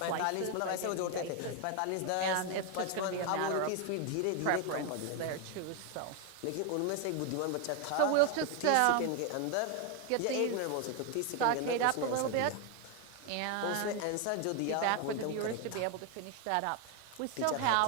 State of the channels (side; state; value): both; different; correlation 0.01